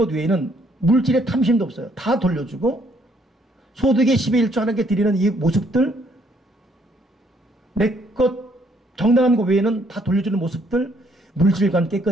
외에는 물질의 탐심도 없어요. 다 돌려주고 소득의 10의 1조 하나님께 드리는 이 모습들 내 것 정당한 것 외에는 다 돌려주는 모습들 물질관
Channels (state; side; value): normal; both; correlation 0.67